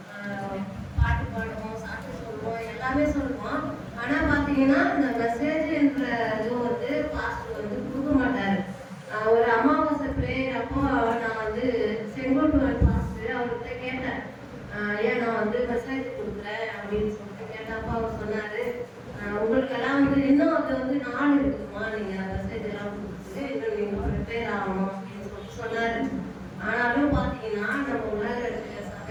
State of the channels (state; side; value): identical; both; correlation 1.00